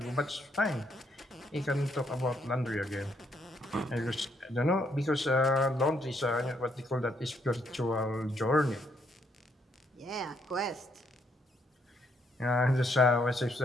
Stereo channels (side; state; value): both; normal; correlation 0.73